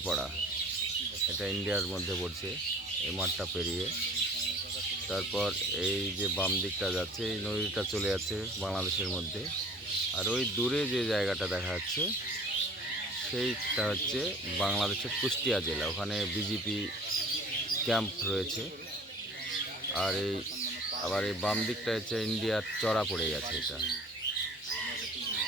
এটা ইন্ডিয়ার মধ্যে পড়ছে। এই মাঠটা পেরিয়ে তারপর এই যে বাম দিকটা যাচ্ছে, এই নদীটা চলে যাচ্ছে বাংলাদেশের মধ্যে। আর ওই দূরে যে জায়গাটা দেখা যাচ্ছে সেইটা হচ্ছে বাংলাদেশের কুষ্টিয়া জেলা, ওখানে বিজেপি ক্যাম্প রয়েছে। আর আবার এই বাম দিকটা হচ্ছে ইন্ডিয়ার চড়া পড়ে গেছে। এটা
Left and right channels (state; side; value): normal; both; correlation 0.47